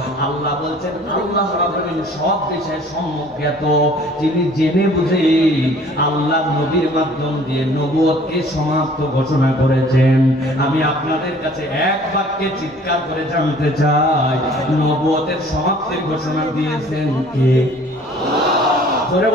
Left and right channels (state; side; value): normal; both; correlation 0.52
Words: আল্লাহ বলছেন আল্লাহ রাব্বুল আলামিন সব বিষয়ে সম্যজ্ঞাত, যিনি জেনে বুঝে আল্লাহ নবীর মাধ্যম দিয়ে নবুয়তকে সমাপ্ত ঘোষণা করেছেন। আমি আপনাদের কাছে এক বাক্যে চিৎকার করে জানতে চাই, নবুয়তের সমাপ্তির ঘোষণা দিয়েছেন কে? জোরে